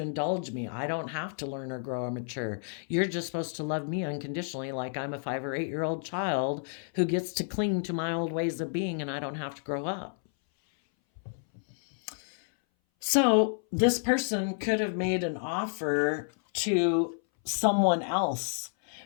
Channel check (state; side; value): silent; right; 58 dB below the other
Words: indulge me. I don't have to learn or grow or mature. You're just supposed to love me unconditionally, like I'm a 5 or 8 year old child who gets to cling to my old ways of being and I don't have to grow up. So this person could have made an offer to someone else.